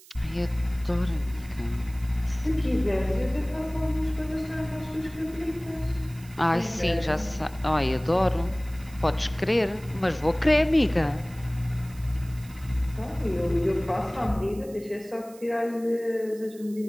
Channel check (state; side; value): noise; right; hiss, 22 dB below the sound